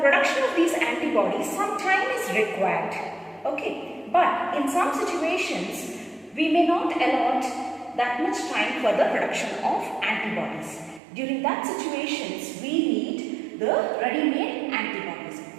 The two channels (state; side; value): drops out; left; at 11.0 s